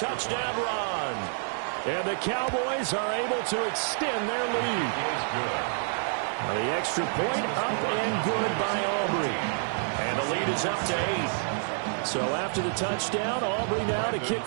run. And the Cowboys are able to extend their lead. The extra point up and good by Aubrey. And the lead is up to 8. So after the touchdown, Aubrey now to kick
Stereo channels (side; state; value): left; silent; 59 dB below the other